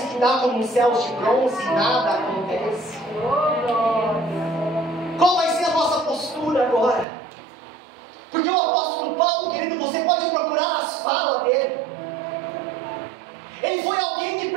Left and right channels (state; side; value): drops out; left; at 7.1 s